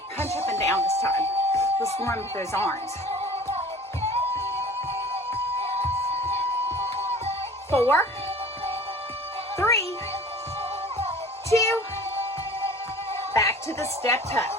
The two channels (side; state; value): both; normal; correlation 0.45